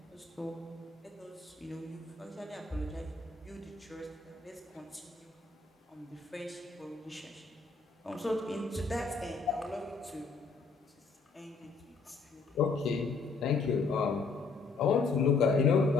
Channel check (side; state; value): right; quieter; 4.4 dB